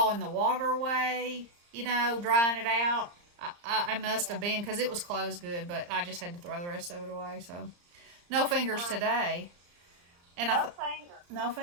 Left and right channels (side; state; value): left; late; 34 ms